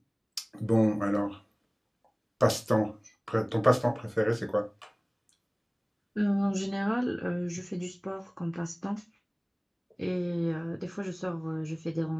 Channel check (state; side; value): identical; both; correlation 1.00